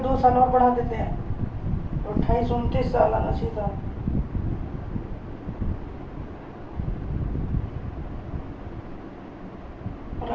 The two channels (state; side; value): identical; both; correlation 1.00